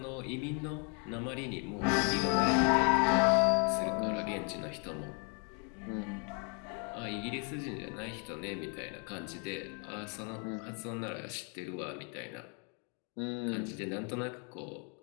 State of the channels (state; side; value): quieter; right; 37.9 dB